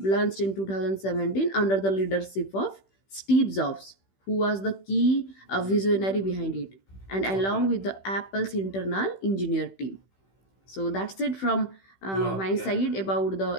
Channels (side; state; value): right; late; 15 ms